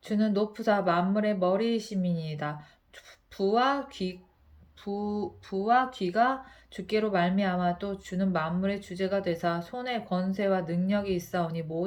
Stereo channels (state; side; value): identical; both; correlation 1.00